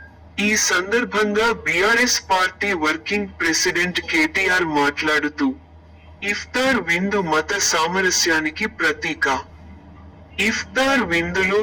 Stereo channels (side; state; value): both; identical; correlation 1.00